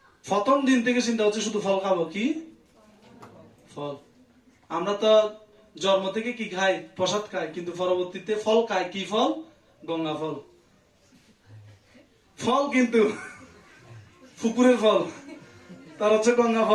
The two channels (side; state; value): both; identical; correlation 1.00